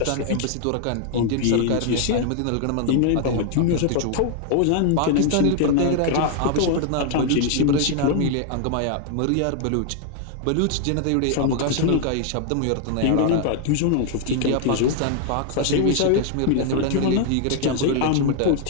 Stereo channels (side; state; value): both; different; correlation 0.00